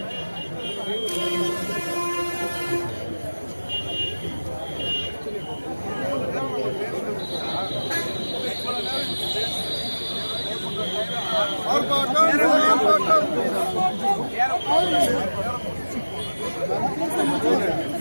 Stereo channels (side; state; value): both; inverted; correlation -1.00